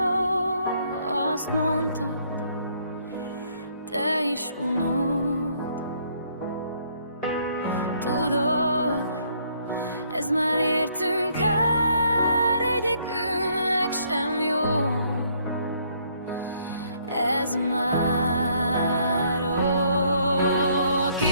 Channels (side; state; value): both; inverted; correlation -0.67